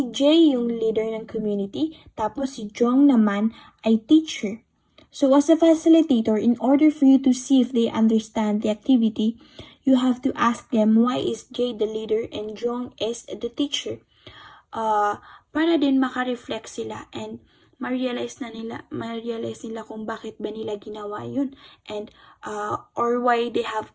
J yung leader ng community, tapos si Jong naman ay teacher. So as a facilitator, in order for you to see if they understand the activity, you have to ask them why is J the leader and Jong is the teacher. Para din makareflect sila and ma-realize nila kung bakit ba nila ginawa yun and or why they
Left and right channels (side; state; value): both; identical; correlation 1.00